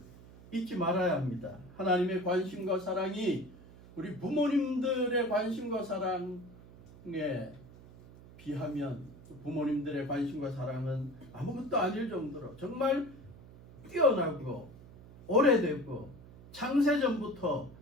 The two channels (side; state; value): right; noise; hum, 19 dB below the sound